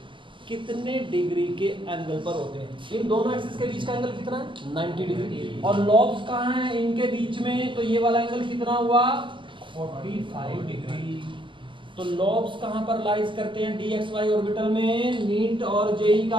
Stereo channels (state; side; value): late; left; 0.24 ms